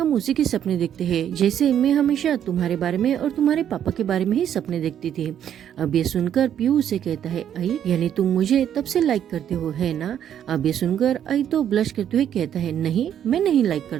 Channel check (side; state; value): left; quieter; 9.8 dB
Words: उसी के सपने देखते हैं। जैसे मैं हमेशा तुम्हारे बारे में और तुम्हारे पापा के बारे में ही सपने देखती थी। अब ये सुनकर पीयू उसे कहता है, आई यानी तुम मुझे तब से लाइक करते हो है ना? अब ये सुनकर आई तो ब्लश करते हुए कहता है, नहीं मैं नहीं लाइक